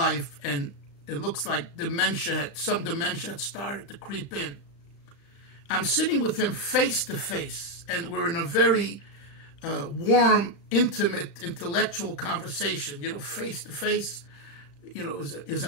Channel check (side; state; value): right; late; 35 ms